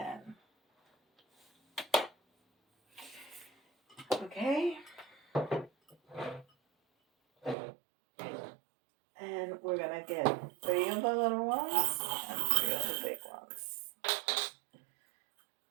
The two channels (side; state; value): left; drops out; at 7.6 s